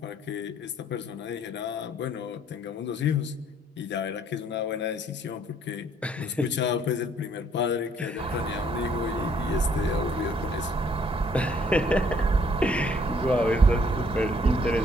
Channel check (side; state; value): both; normal; correlation 0.63